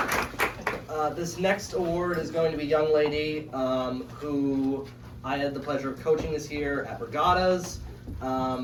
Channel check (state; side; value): identical; both; correlation 1.00